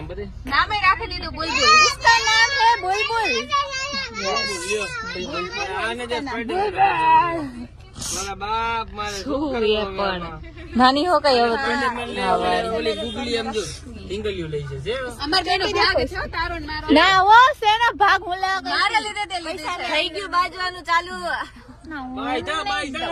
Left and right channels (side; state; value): both; identical; correlation 1.00